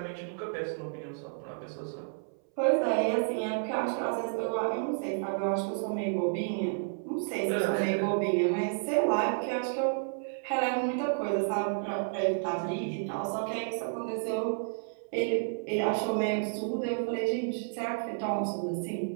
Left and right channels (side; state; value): left; silent; 57 dB below the other